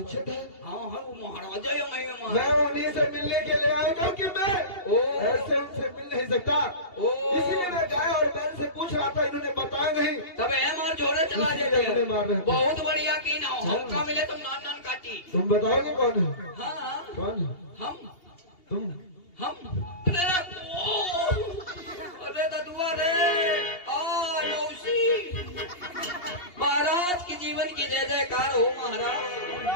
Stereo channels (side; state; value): right; late; 2.8 ms